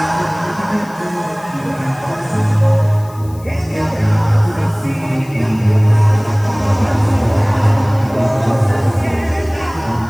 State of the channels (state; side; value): noise; left; hiss, 24 dB below the sound